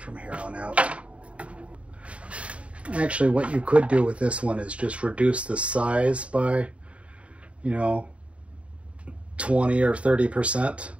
here on out. Actually, what you could do with this one is just reduce the size by, you know, 20 or 30%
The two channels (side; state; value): left; late; 0.063 ms